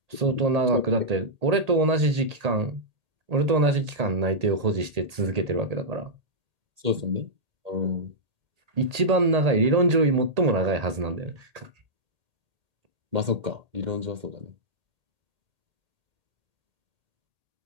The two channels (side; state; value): left; late; 1.8 ms